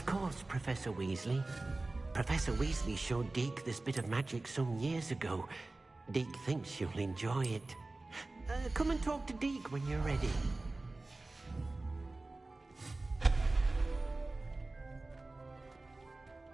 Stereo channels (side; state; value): left; quieter; 3.1 dB